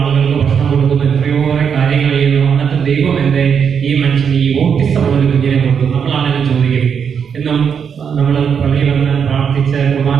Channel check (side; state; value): left; quieter; 7.1 dB